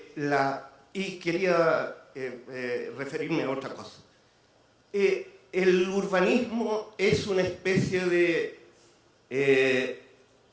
y quería referirme a otra cosa. El urbanismo es una especie de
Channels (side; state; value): both; identical; correlation 1.00